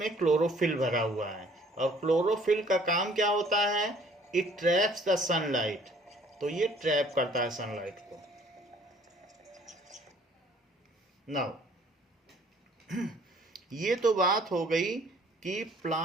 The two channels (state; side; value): normal; both; correlation 0.57